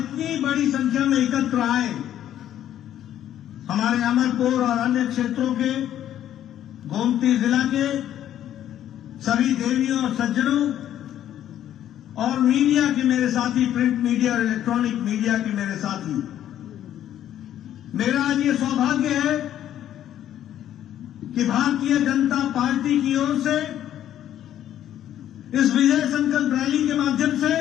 बड़ी संख्या में एकत्र आए हमारे अमरपुर और अन्य क्षेत्रों के, गोमती जिला के सभी देवियों और सज्जनों और मीडिया के मेरे साथी, प्रिंट मीडिया और इलेक्ट्रॉनिक मीडिया के मेरे साथी, मेरा आज ये सौभाग्य है कि भारतीय जनता पार्टी की ओर से इस विजय संकल्प रैली के माध्यम से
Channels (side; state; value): right; quieter; 11.3 dB